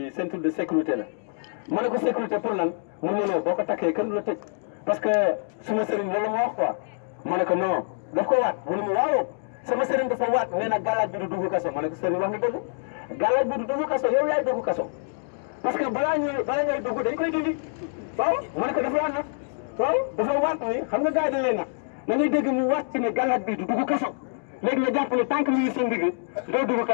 ceinture de sécurité la ma ne ko sécurité pour lan mu ne non boo ko takkee kenn du la tëj parce que suma sëriñ loolu ma wax quoi ma ne ko non daf ko waat mu ne ma waaw sama sëriñ dafa waat nee na galaaj bi du dugg kaso ma ne ko sëriñ wax nga dëgg galaaj bi du dugg kaso yow yaay dugg kaso parce que balaa ngay dugg dañ koy dindi waaw ma ne ko dafa waat nag waaw dafa waat ni xam nga gars yi dañ leen nag da ngay dégg mu waat ci ne galaaj bi du dugg kaso léegi nga jàpp ne tant que mu ngi sa ndigg doo dugg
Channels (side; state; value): right; silent; digital silence